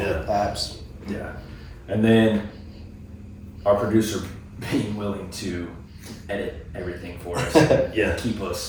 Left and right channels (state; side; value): identical; both; correlation 1.00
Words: apps. Yeah. And then our producer being willing to edit everything for us, Yeah. keep